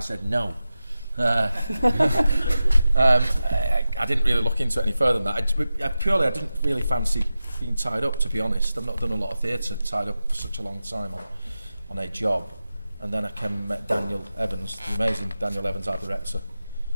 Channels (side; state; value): both; inverted; correlation -0.93